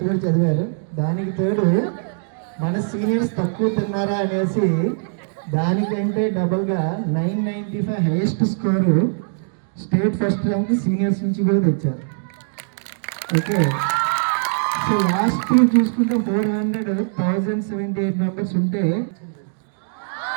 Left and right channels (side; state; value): left; silent; digital silence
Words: చదివారు. దానికి తోడు మన సీనియర్స్ తక్కువ తిన్నారా అనేసి దానికంటే డబల్గా 995 highest score state first rank seniors నుంచి కూడా తెచ్చారు. ఓకే, సో లాస్ట్ ఇయర్ చూసుకుంటే 400,178 మెంబర్స్ ఉంటే